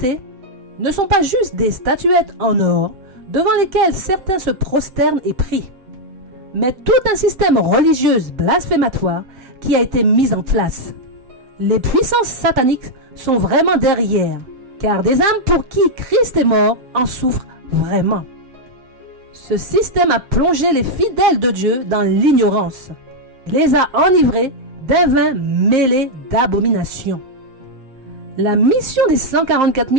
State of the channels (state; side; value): late; left; 7.6 ms